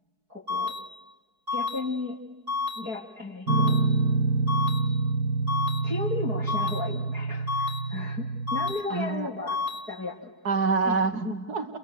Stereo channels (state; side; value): late; left; 4.7 ms